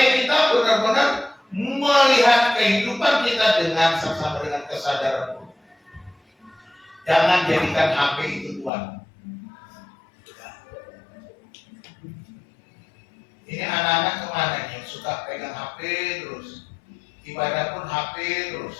kita benar-benar melihat kehidupan kita dengan saksama, dengan kesadaran. Jangan jadikan HP itu Tuhan. Ini anak-anak kemana nih yang suka pegang HP terus, ibadah pun HP terus.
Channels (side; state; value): right; drops out; at 8.7 s